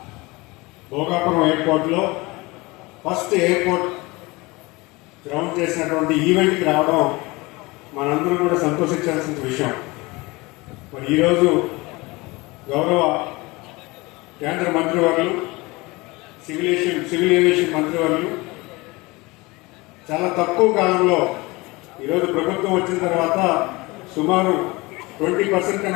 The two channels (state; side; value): quieter; right; 23.4 dB